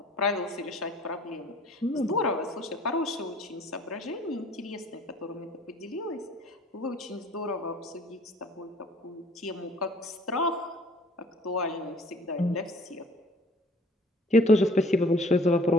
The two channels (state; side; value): normal; both; correlation 0.53